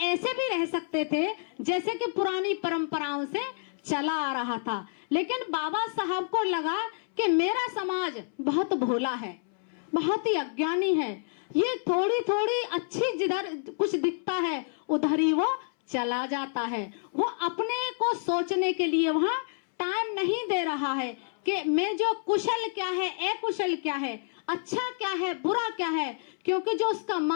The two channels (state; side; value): silent; right; 59 dB below the other